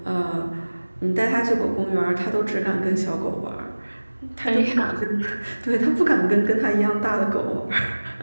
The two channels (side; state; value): both; inverted; correlation -1.00